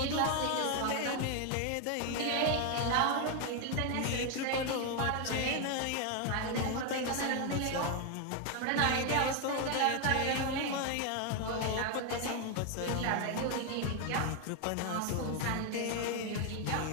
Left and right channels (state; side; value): different; both; correlation 0.01